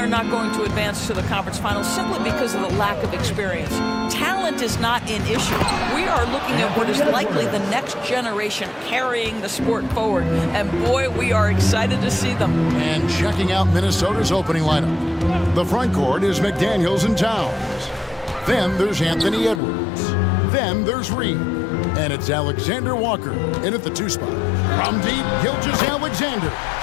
not going to advance to the conference finals simply because of the lack of experience. Talent is not an issue. We are looking at what is likely the next generation carrying the sport forward. And boy, we are excited to see them. And checking out Minnesota's opening lineup. The front court is McDaniels and Towns. Then there's Anthony Edwards. Then there's Reed. And it's Alexander Walker in at the 2 spot. From deep, Gilgeous-Alexander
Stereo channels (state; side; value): drops out; right; at 19.6 s